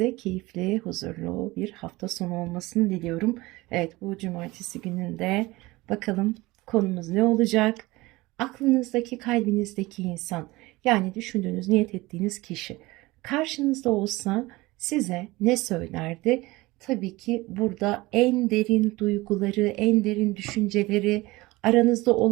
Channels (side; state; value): left; quieter; 20.7 dB